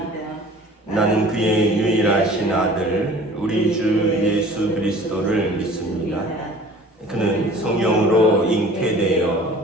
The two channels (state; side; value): normal; both; correlation 0.46